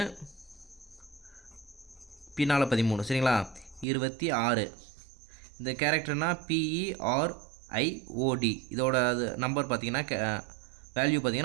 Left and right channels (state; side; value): drops out; left; at 3.9 s